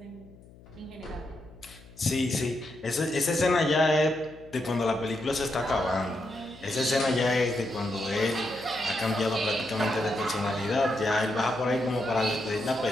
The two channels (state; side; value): noise; left; hum, 22 dB below the sound